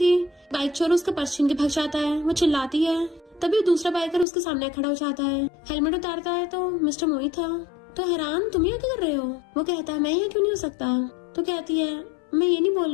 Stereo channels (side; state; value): right; drops out; at 4.2 s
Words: बाइक चोर उसका पर्स छीन के भाग जाता है। वो चिल्लाती है तभी दूसरा बाइकर उसके सामने खड़ा हो जाता है, हेलमेट उतारता है तो मिस्टर मो ही था। तो हैरान तुम यहाँ क्या कर रहे हो? वो कहता है मैं यहाँ क्यों नहीं हो सकता। तो कहती है मैं ये नहीं बोल